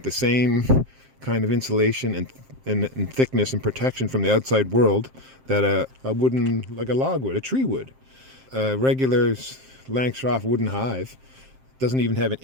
the same kind of insulation and thickness and protection from the outside world that a wooden, like a log would, a tree would. A regular Langstroth wooden hive doesn't even have an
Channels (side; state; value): left; late; 7.6 ms